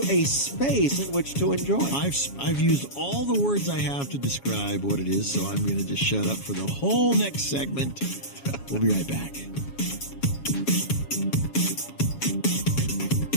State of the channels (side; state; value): right; late; 7.2 ms